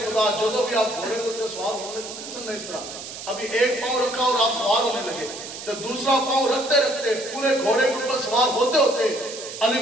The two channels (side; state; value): right; noise; hiss, 11 dB below the sound